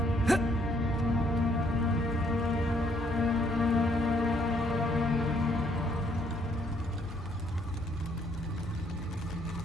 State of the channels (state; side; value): normal; both; correlation 0.69